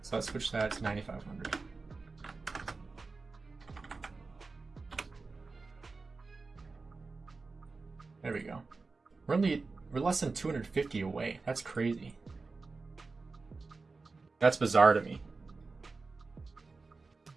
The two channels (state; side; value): quieter; left; 4.0 dB